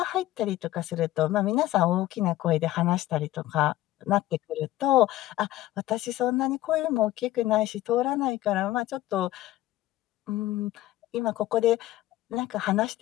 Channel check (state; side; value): quieter; right; 15.4 dB